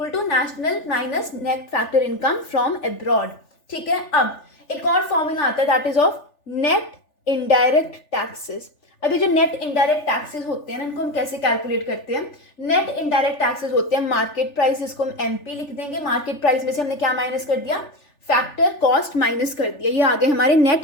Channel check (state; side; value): late; right; 3.4 ms